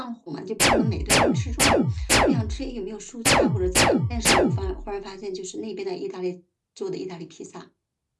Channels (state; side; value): identical; both; correlation 1.00